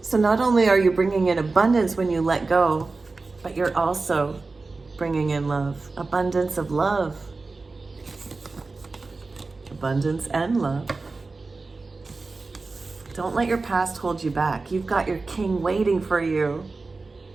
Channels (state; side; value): quieter; left; 3.8 dB